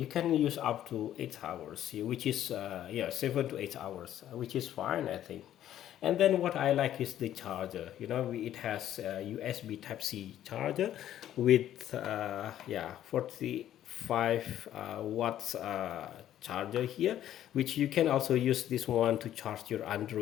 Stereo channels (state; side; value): quieter; right; 11.8 dB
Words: can use up to 8 hours, which is 7 to 8 hours, which is fine, I think. And then what I like is the charger. It has USB Type C charger with 45 watts charger here, which you can also use this one to charge your